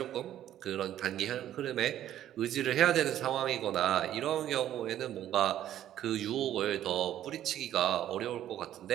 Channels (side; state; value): left; quieter; 11.9 dB